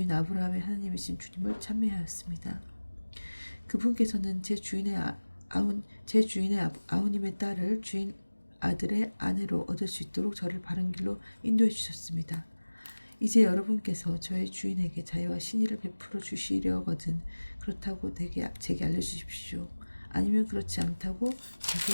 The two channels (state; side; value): inverted; both; correlation -1.00